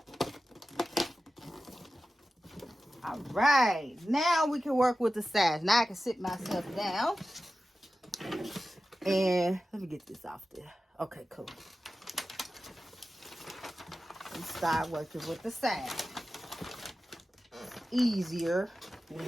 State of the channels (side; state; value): both; normal; correlation 0.94